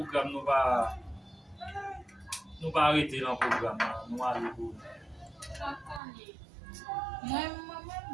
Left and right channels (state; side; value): drops out; left; at 6.0 s